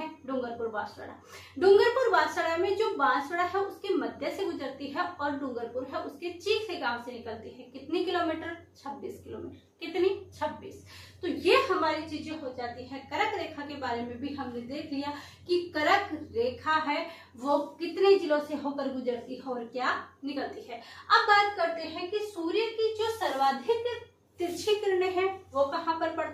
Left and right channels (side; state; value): both; identical; correlation 1.00